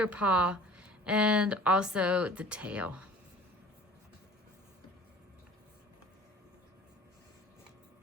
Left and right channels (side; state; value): both; normal; correlation 0.46